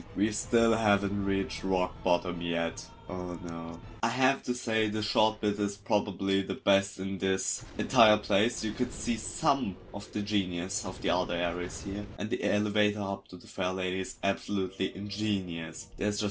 We still haven't reached rock bottom yet. Oh no. I have to say the short bit is probably the best in this entire place. You could see some of the genius of the other areas here. And the elevator up to the Fair Lady is absolutely ingenious. There's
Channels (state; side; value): identical; both; correlation 1.00